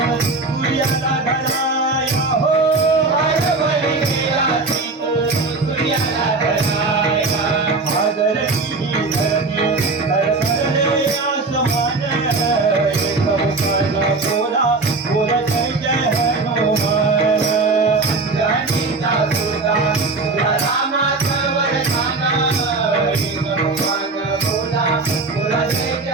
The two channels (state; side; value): quieter; left; 3.7 dB